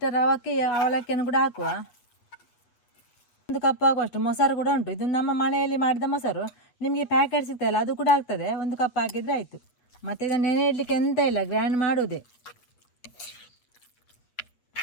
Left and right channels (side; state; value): right; late; 8.3 ms